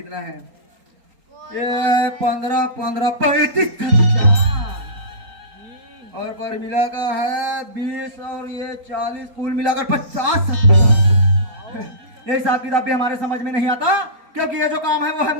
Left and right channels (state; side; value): late; left; 4.3 ms